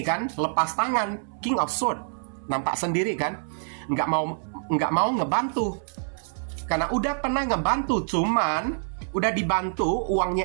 kan lepas tangan, King of Swords. Nampak sendiri kan, nggak mau ngebantu. Karena udah pernah ngebantu, cuman udah dibantu,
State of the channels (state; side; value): silent; left; 61 dB below the other